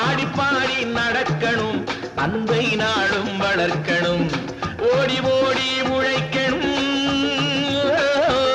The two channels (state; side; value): identical; both; correlation 1.00